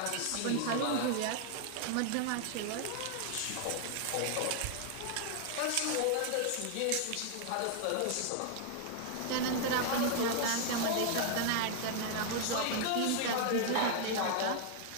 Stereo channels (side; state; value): both; different; correlation 0.00